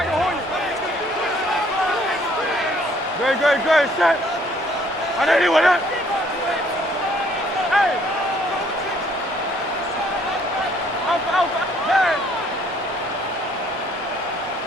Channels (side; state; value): both; normal; correlation 0.62